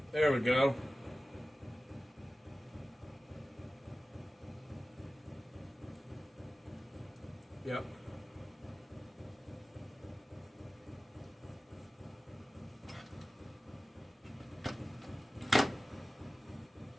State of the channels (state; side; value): normal; both; correlation 0.96